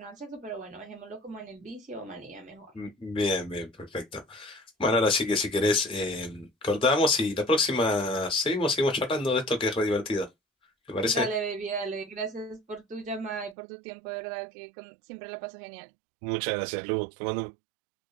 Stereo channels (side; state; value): left; drops out; at 13.6 s